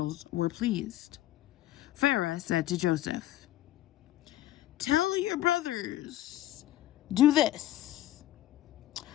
were pleased. Pharaoh said to Joseph, "Tell your brothers, do this.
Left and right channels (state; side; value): quieter; right; 14.0 dB